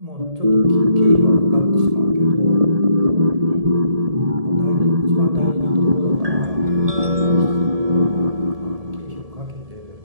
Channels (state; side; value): late; left; 1.7 ms